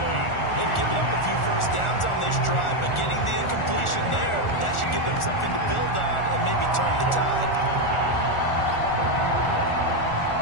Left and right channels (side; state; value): right; late; 1.4 ms